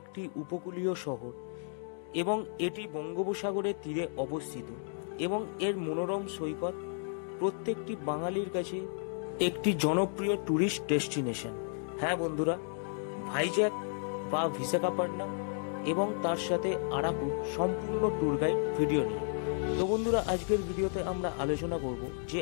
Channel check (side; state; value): right; silent; 56 dB below the other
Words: উপকূলীয় শহর, এবং এটি বঙ্গোপসাগরের তীরে অবস্থিত এবং এর মনোরম সৈকত প্রত্যেকটি বাঙালির কাছে একটি জনপ্রিয় ট্যুরিস্ট ডেস্টিনেশন। হ্যাঁ বন্ধুরা, ভাইজ্যাক বা বিশাখাপট্টনম এবং তার সাথে আরাকুর সম্পূর্ণ ট্যুর গাইড ভিডিও নিয়ে। তো বন্ধুরা, আজকের ভিডিওতে আমরা আলোচনা করব যে